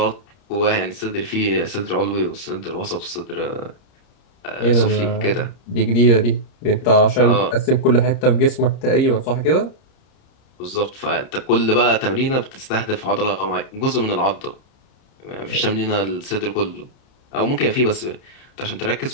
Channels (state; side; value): late; right; 30 ms